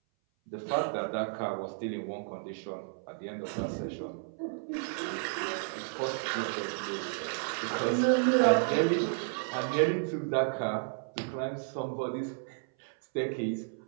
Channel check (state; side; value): silent; left; 56 dB below the other